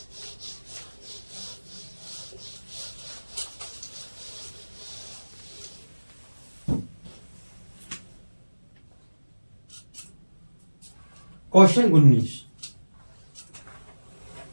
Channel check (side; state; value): both; inverted; correlation -1.00